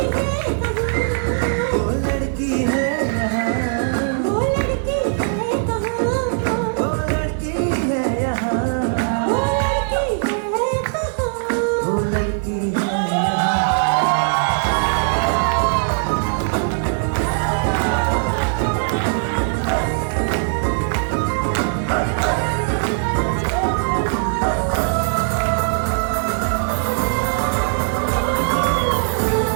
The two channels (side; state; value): left; silent; digital silence